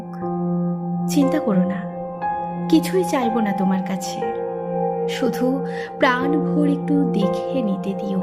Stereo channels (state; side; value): identical; both; correlation 1.00